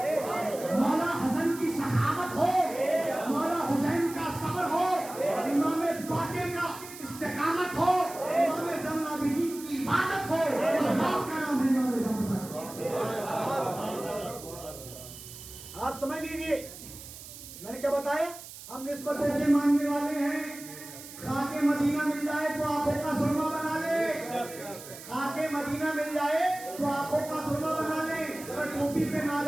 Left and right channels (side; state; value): right; noise; hiss, 14 dB below the sound